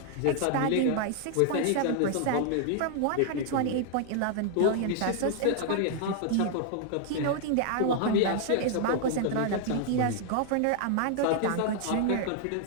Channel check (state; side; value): different; both; correlation 0.00